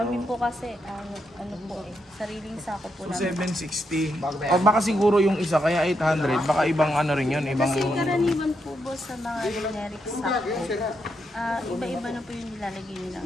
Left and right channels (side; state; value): both; normal; correlation 0.81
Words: Kami po kasi, ano po sariling sako po So, namin. 760. O baka siguro yung isa, kaya 800. Baka ibang ano rin yun, ibang... Kasi karaniwan po boss sa mga generic sako, iba-iba na po yung nilalagay nilang